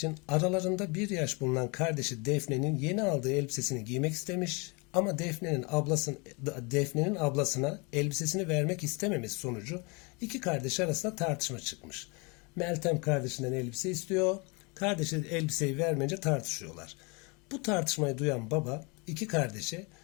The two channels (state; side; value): quieter; right; 30.0 dB